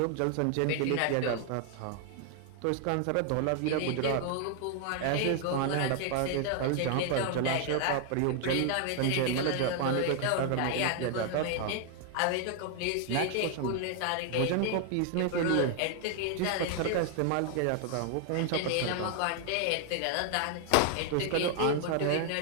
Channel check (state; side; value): different; both; correlation 0.00